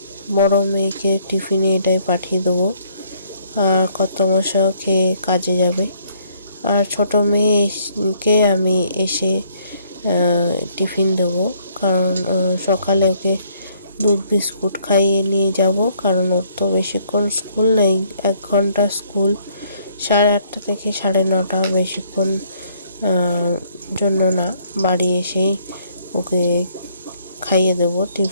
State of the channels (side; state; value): both; inverted; correlation -0.65